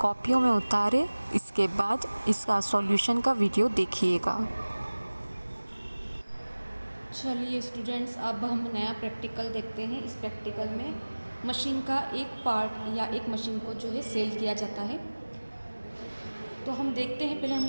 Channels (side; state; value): both; inverted; correlation -1.00